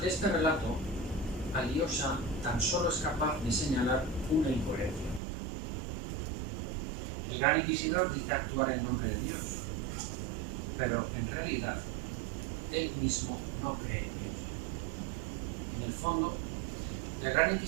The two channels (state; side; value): drops out; left; at 5.2 s